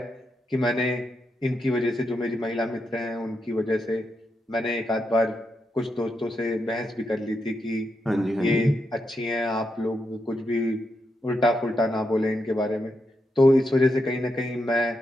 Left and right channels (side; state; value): both; normal; correlation 0.84